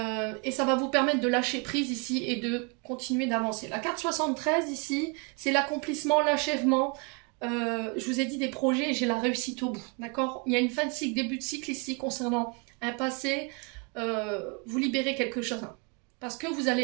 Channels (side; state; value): left; quieter; 32.9 dB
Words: Et ça va vous permettre de lâcher prise ici et de continuer d'avancer. La carte 73 ici, c'est l'accomplissement, l'achèvement. Je vous ai dit des projets et j'ai la réussite au bout, d'accord? Il y a une fin de cycle, début de cycle ici concernant un passé. Vous libérez quelque chose, hein, parce que vous